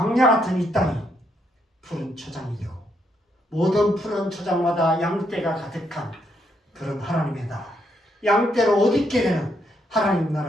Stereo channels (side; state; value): both; normal; correlation 0.76